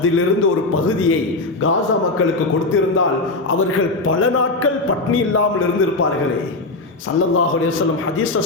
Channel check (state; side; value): quieter; right; 3.1 dB